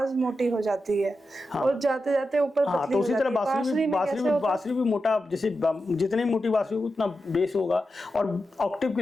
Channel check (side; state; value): both; normal; correlation 0.89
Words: मोटी हो जाती है, और जाते जाते ऊपर पतली हो जाती है। तो उसी तरह बांसुरी भी मोटा, जैसे जितनी मोटी बांसुरी उतना बेस होगा। और ऑक्टिव के